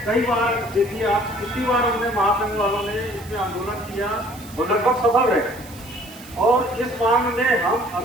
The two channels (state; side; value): noise; right; hiss, 19 dB below the sound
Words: कई बार देखिए आप कितनी बार हमने महासंघ वालों ने इसमें आंदोलन किया, वो लगभग सफल रहे। और इस मांग में हम